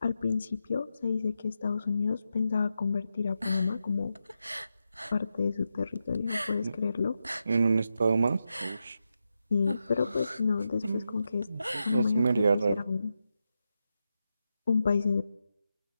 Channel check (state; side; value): inverted; both; correlation -0.87